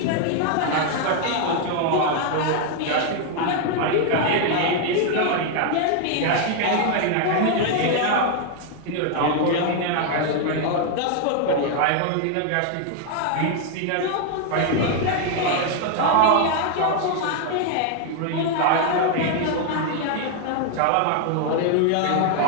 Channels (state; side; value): different; both; correlation 0.00